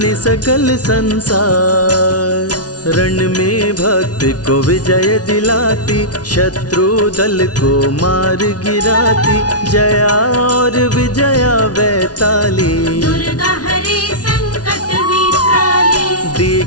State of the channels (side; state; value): right; late; 0.69 ms